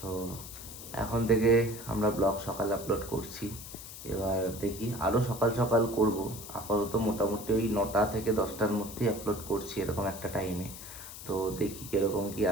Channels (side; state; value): left; noise; hiss, 12 dB below the sound